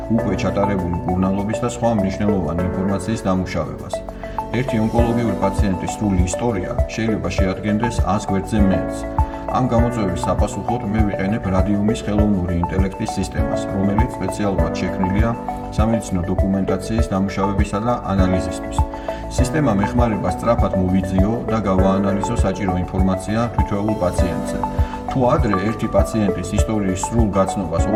უკვე ჩატარებული მკურნალობის და სხვა მნიშვნელოვანი ინფორმაციის დამუშავებას. ერთი ონკოლოგიური პაციენტის სრული ისტორია შეიძლება შეადგენდეს 100 გვერდზე მეტს. ამ გამოწვევის საპასუხოდ მე ვიყენებ რადიუმის ხელოვნური ინტელექტის სისტემას, რომელიც სპეციალურად შექმნილია სამედიცინო დოკუმენტაციის დამუშავებისა და ანალიზისთვის. სისტემამ ეხმარება სწრაფად მოვიძიო და გავაანალიზო საჭირო ინფორმაცია თითოეულ პაციენტზე. თუ ადრე ერთი პაციენტის ისტორიის სრულ გაცნობას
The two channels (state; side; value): identical; both; correlation 1.00